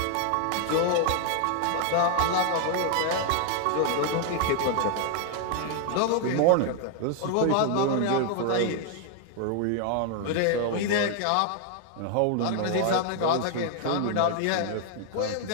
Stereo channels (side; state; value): both; different; correlation 0.00